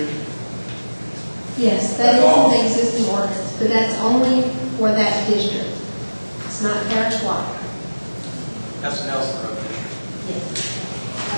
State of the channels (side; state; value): both; inverted; correlation -1.00